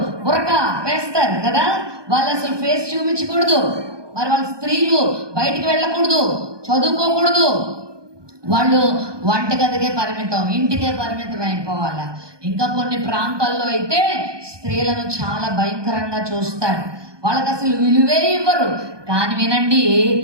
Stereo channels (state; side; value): late; left; 1.2 ms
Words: బురకా వేస్తారు కదా. వాళ్ళు అసలు ఫేస్ చూపించకూడదు. మరి వాళ్ళ స్త్రీలు బయటికి వెళ్ళకూడదు, చదువుకోకూడదు. వాళ్ళు వంటగదికే పరిమితం, ఇంటికే పరిమితం అయిపోవాలా. ఇంకా కొన్ని ప్రాంతాల్లో అయితే స్త్రీలను చాలా భయంకరంగా చూస్తారు, వాళ్ళకి అసలు విలువే ఇవ్వరు. కానీ వినండి,